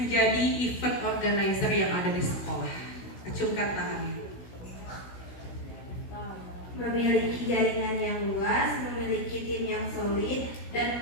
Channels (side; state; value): right; late; 16 ms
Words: event organizer yang ada di sekolah. Acungkan tangannya. Memiliki jaringan yang luas, memiliki tim yang solid, dan